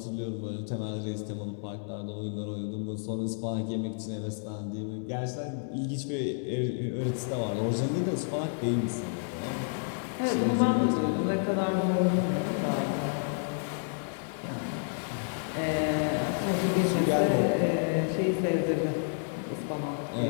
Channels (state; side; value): silent; right; digital silence